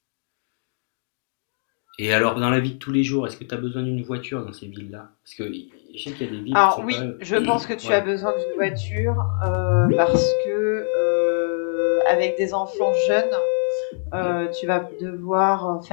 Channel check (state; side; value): silent; right; digital silence